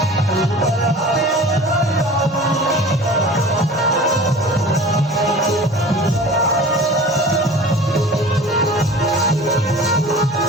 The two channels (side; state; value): both; normal; correlation 0.41